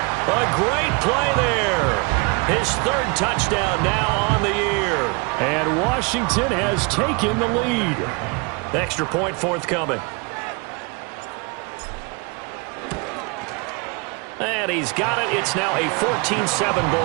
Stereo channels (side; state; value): left; quieter; 30.3 dB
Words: A great play there. His third touchdown now on the year. And Washington has taken the lead. Extra point forthcoming. And he's got it. It's now a 14-7